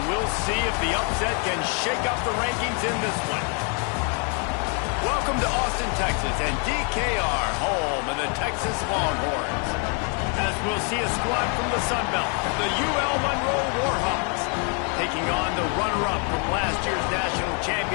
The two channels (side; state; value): right; quieter; 37.9 dB